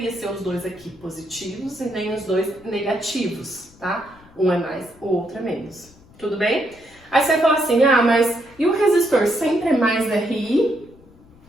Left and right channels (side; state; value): left; noise; rumble, 26 dB below the sound